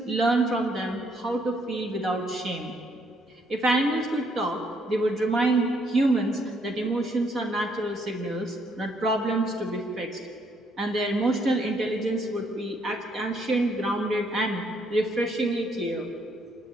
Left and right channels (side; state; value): both; normal; correlation 0.70